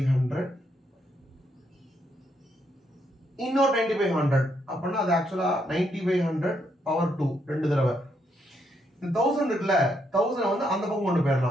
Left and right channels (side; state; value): both; normal; correlation 0.76